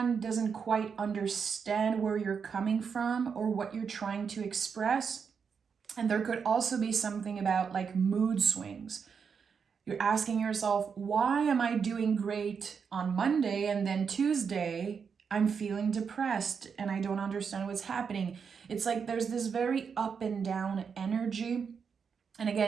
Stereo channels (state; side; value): quieter; left; 6.3 dB